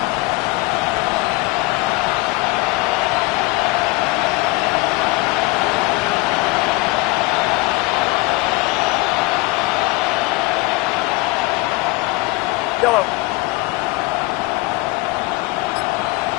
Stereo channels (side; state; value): right; quieter; 23.0 dB